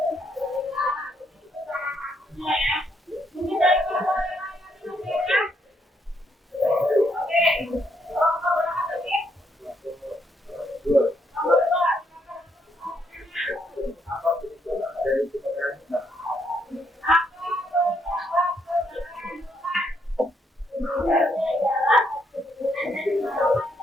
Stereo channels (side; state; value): both; normal; correlation 0.74